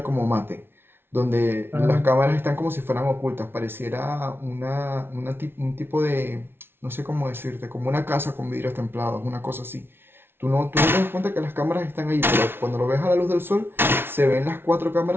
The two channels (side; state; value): left; late; 0.11 ms